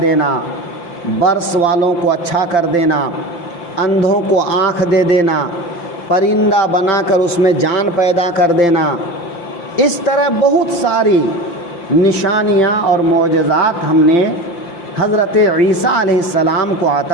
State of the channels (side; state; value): right; late; 5.8 ms